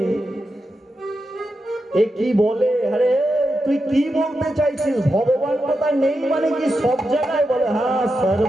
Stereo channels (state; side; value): normal; both; correlation 0.88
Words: এ কি বলে? আরে তুই কি বলতে চাইছিস? ভগবান কোথায় নেই মানে কি সব জায়গায়? বলে হ্যাঁ,